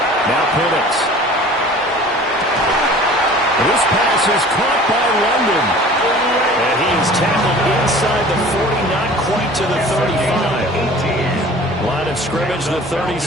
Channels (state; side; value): normal; both; correlation 0.45